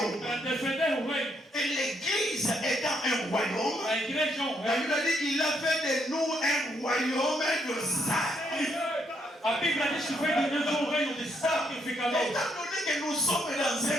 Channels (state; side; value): normal; both; correlation 0.74